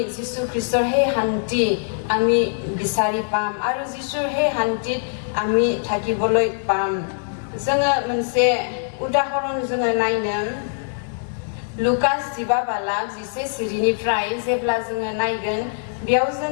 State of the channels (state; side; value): silent; right; digital silence